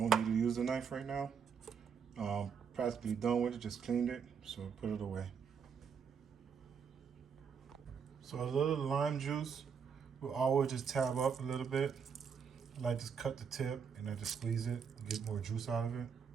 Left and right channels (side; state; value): left; quieter; 6.6 dB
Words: need to use the knife right now. Practically done with it, just cleaned it, so put it away. So a little lime juice will always just tab up a little bit. I like to cut the tip and I just squeeze it, get more juice out of it.